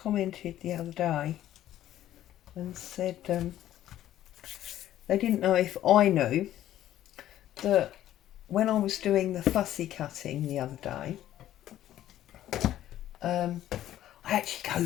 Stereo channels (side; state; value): right; quieter; 12.7 dB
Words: the other day and said they didn't know if I knew that when I was doing the fussy cutting the other day, I actually go